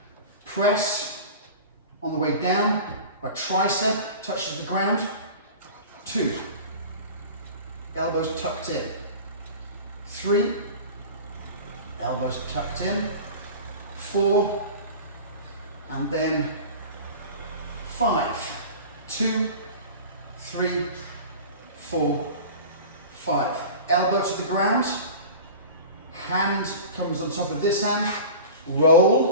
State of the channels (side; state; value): both; inverted; correlation -0.36